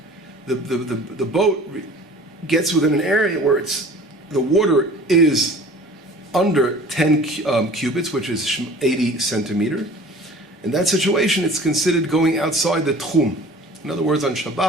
the boat gets within an area where the water is under 10 cubits, which is 80 centimeters, in that situation, it's considered going outside the tchum. In other words, on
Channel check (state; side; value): normal; both; correlation 0.45